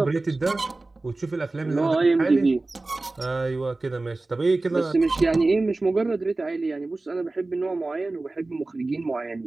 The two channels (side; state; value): left; quieter; 3.2 dB